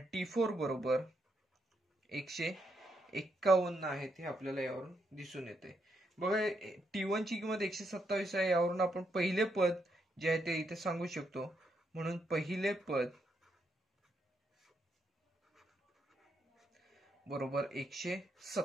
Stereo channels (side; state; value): both; normal; correlation 0.79